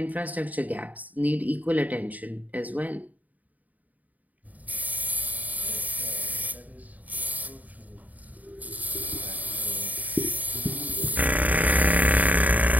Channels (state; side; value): late; left; 0.076 ms